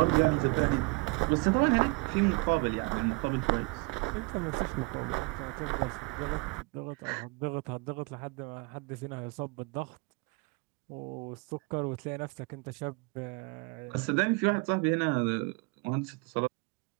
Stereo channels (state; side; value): quieter; left; 27.8 dB